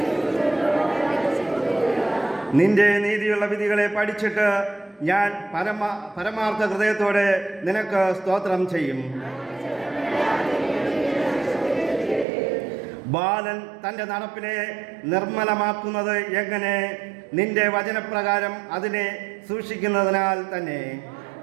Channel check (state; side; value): drops out; left; at 12.2 s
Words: നിന്റെ നീതിയുള്ള വിധികളെ പഠിച്ചിട്ട് ഞാൻ പരമാർത്ഥ ഹൃദയത്തോടെ നിനക്ക് സ്തോത്രം ചെയ്യും. ബാലൻ തൻ്റെ നടപ്പിനെ നിർമ്മലമാക്കുന്നത് എങ്ങനെ? നിന്റെ വചനപ്രകാരം അതിനെ സൂക്ഷിക്കുന്നതിനാൽ തന്നെ.